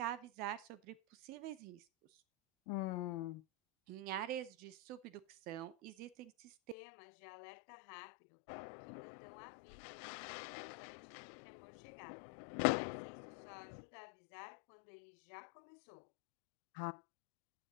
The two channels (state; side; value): drops out; right; at 6.8 s